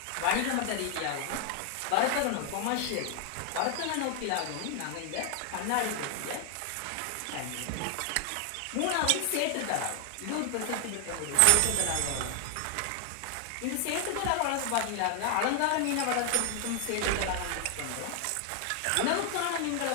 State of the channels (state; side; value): different; both; correlation 0.00